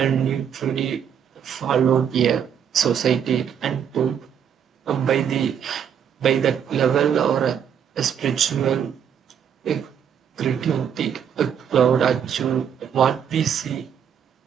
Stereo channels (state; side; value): quieter; left; 8.3 dB